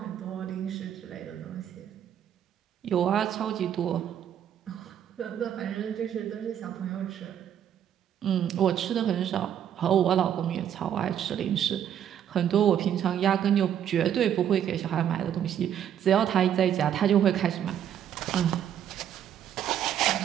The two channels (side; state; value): left; quieter; 9.8 dB